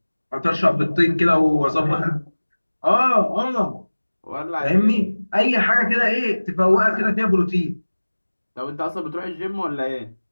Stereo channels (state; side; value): inverted; both; correlation -1.00